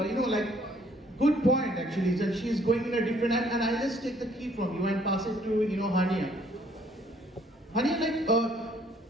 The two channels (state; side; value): normal; both; correlation 0.62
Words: good point actually. That she's going in a different and I'll just take the key from you and pass it to Haniya. Haniya, like